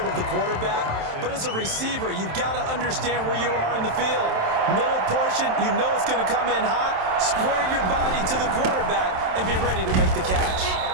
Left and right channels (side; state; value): left; late; 27 ms